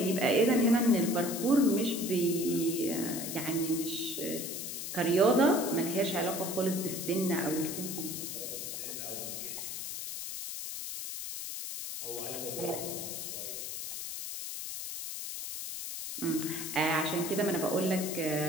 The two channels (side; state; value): left; noise; hiss, 6 dB below the sound